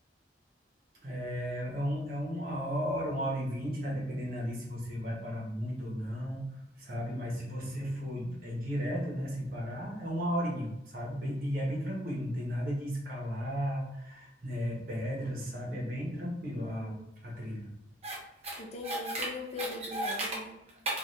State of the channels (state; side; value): normal; both; correlation 0.67